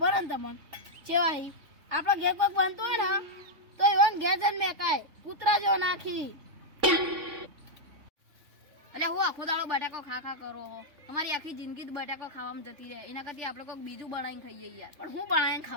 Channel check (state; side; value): late; left; 3.5 ms